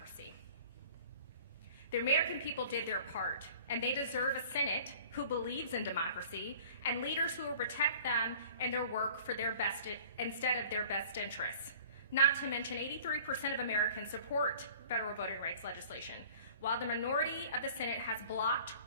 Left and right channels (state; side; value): inverted; both; correlation -0.48